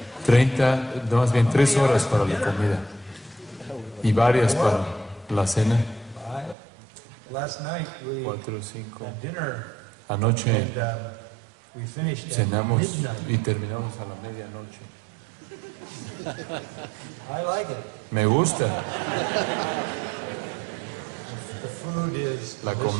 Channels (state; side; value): drops out; left; at 6.6 s